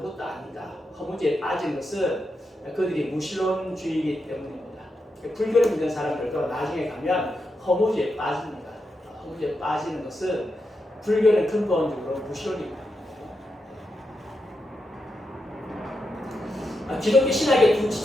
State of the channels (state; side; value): normal; both; correlation 0.86